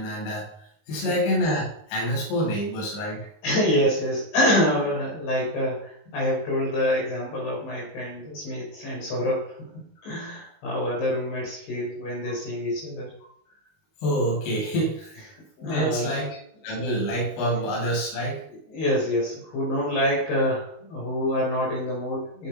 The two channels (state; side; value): late; right; 19 ms